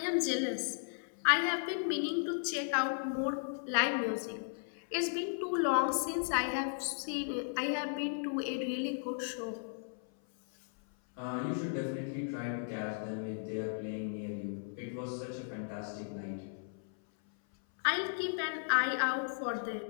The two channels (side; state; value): right; silent; 54 dB below the other